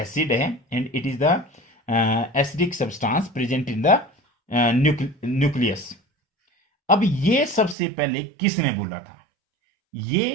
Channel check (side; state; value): left; drops out; at 7.8 s